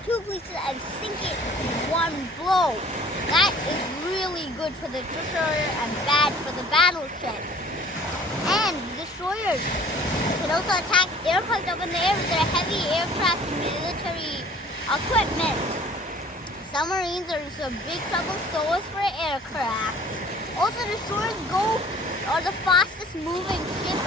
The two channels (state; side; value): normal; both; correlation 0.51